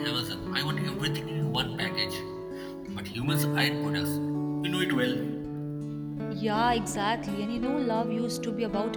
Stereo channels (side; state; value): both; identical; correlation 1.00